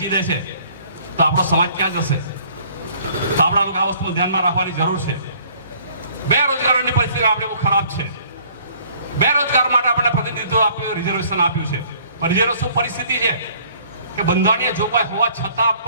દે છે, તો આપણો સમાજ ક્યાં જશે? તો આપણા લોકો આ વસ્તુ ધ્યાનમાં રાખવાની જરૂર છે. બેરોજગારોની પરિસ્થિતિ આપણે બહુ ખરાબ છે. બેરોજગાર માટે આપણે પ્રતિનિધિત્વ આપ્યું, રિઝર્વેશન આપ્યું છે. પણ રિઝર્વેશન પરિસ્થિતિ છે કે બંધારણીય જોગવાઈ હોવા છતાં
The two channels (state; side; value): inverted; both; correlation -0.57